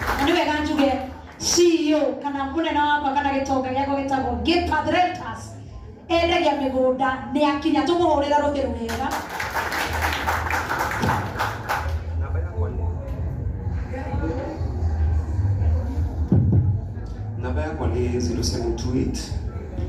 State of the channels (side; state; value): both; identical; correlation 1.00